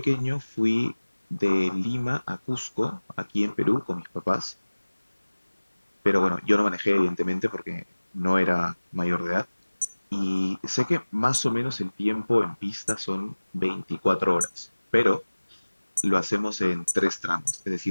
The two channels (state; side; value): inverted; both; correlation -1.00